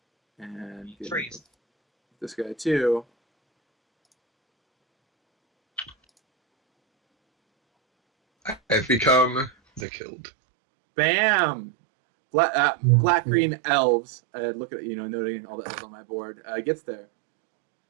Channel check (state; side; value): drops out; left; at 9.9 s